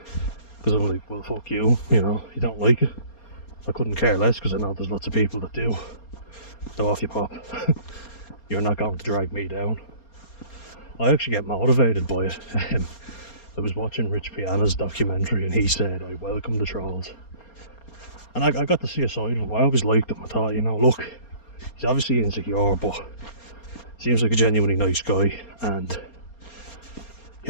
Because I'm like, well, fuck you, you know, you don't like it. I couldn't care less, because I know there's lots of people that do. So off you pop. You're not going to drag me down. I actually get motivated by it. I was watching Rich Piana's documentary and he said, I welcome the trolls. And I got to see a side of him. I always liked him. I thought, you know, look, he's obviously insecure, but seems like a genuinely nice guy. And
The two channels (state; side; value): late; right; 4.3 ms